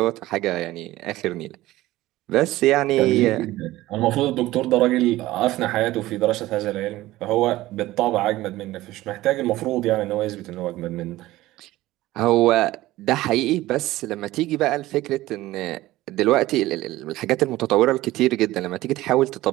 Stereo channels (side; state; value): left; quieter; 16.9 dB